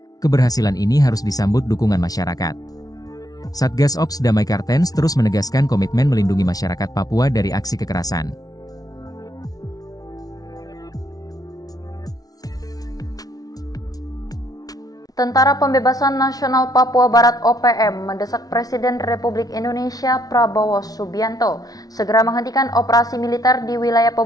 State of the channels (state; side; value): late; right; 0.18 ms